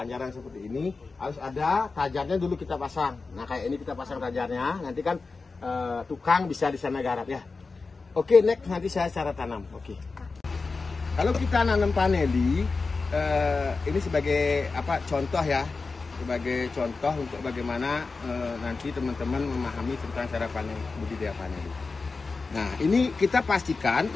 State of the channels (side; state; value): right; quieter; 4.1 dB